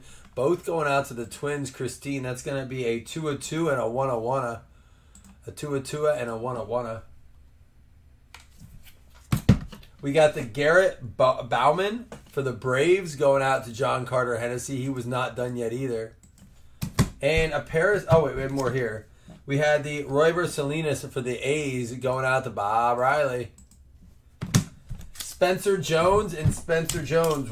both going out to the Twins, Christine. That's going to be a 2-2 and a 1-1. A 2-2 and a 1-1. We got the Garrett Bauman for the Braves going out to John Carter Hennessy. He was not done yet either. And a Paris. Oh, wait, we have more here. We had the Royber Salinas for the A's going out to Bob Riley. Spencer Jones and Spencer Jones,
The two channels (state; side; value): identical; both; correlation 1.00